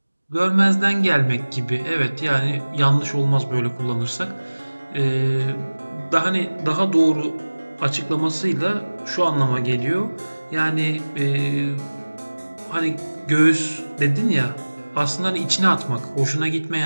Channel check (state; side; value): inverted; both; correlation -1.00